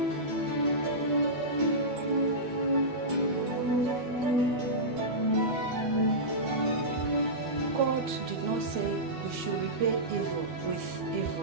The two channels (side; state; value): left; late; 12 ms